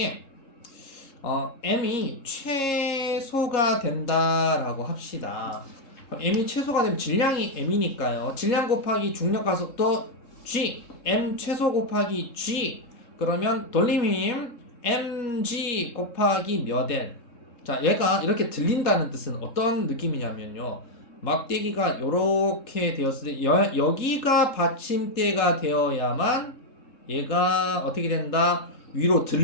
m이 최소가 된다라고 합시다. 그럼 m이 최소가 되면 질량이 m이니까요. 질량 곱하기 중력 가속도 g, m 최소 곱하기 g. 그러면 돌림힘 mg 곱하기 몇 L. 자, 얘가 이렇게 들린다는 뜻은 어떤 느낌이냐면요. 막대기가 요렇게 되었을 때 여기가 받침대가 되어야만 얘가 어떻게 된다? 위로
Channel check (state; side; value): late; right; 3.7 ms